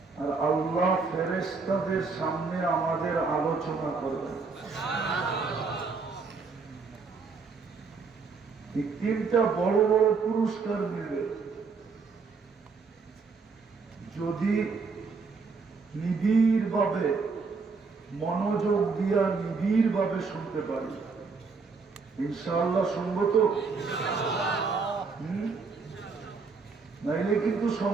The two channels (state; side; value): quieter; left; 4.7 dB